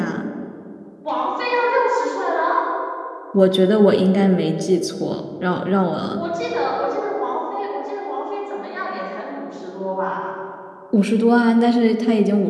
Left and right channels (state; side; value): identical; both; correlation 1.00